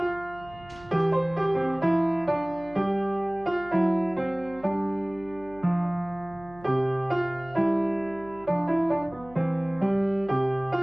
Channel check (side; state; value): right; noise; hum, 22 dB below the sound